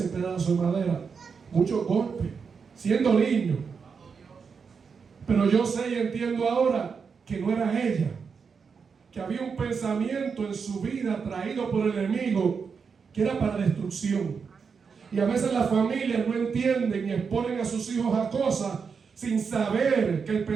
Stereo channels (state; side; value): quieter; left; 5.8 dB